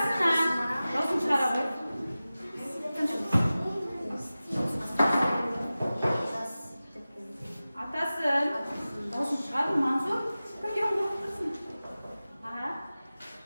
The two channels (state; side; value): inverted; both; correlation -0.96